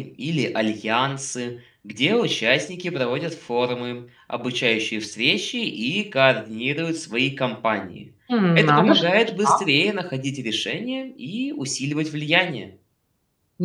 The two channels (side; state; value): both; identical; correlation 1.00